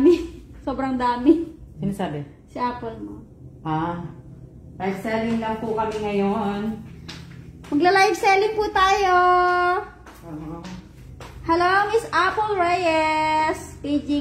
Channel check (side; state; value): both; identical; correlation 1.00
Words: Sobrang dami. Sino sabi? Si Apple mo. Live selling lang po kami ngayon. Magla-live selling po tayo. Hello, Miss Apple Reyes.